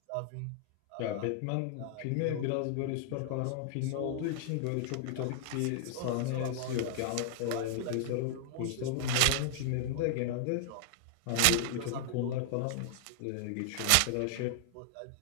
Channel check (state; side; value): different; both; correlation -0.01